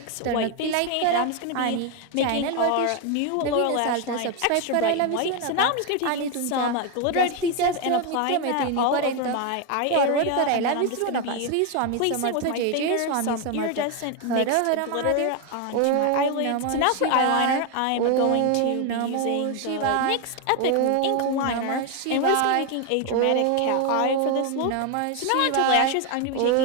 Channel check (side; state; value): both; different; correlation 0.01